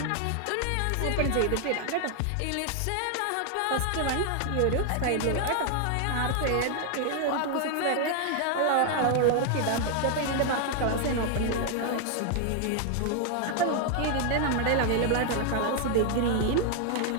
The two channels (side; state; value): both; different; correlation 0.00